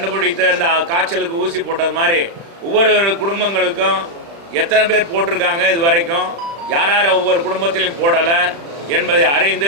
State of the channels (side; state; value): left; late; 35 ms